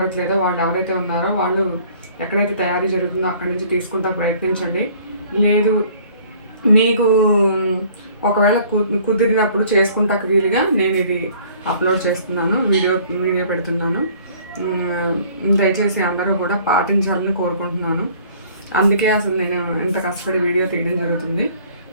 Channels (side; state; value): both; inverted; correlation -0.54